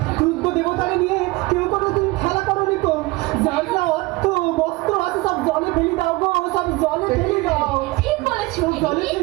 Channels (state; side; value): quieter; left; 22.2 dB